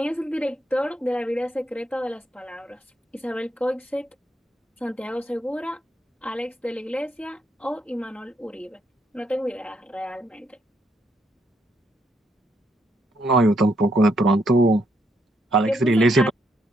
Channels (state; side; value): normal; both; correlation 0.76